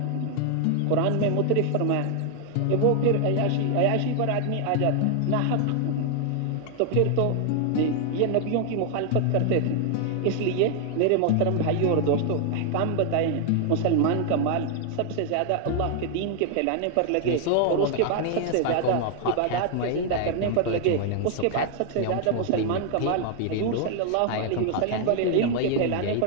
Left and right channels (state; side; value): different; both; correlation 0.00